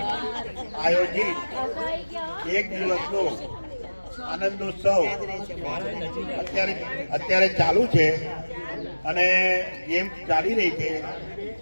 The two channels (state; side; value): inverted; both; correlation -1.00